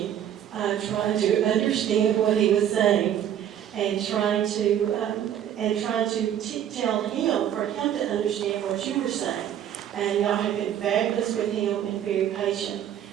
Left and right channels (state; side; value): quieter; left; 10.2 dB